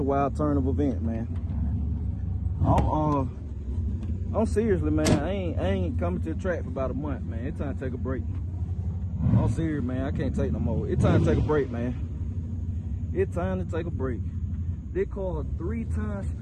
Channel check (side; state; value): both; identical; correlation 1.00